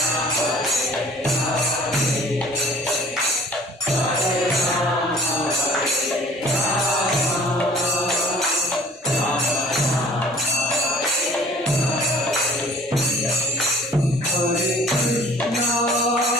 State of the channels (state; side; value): normal; both; correlation 0.50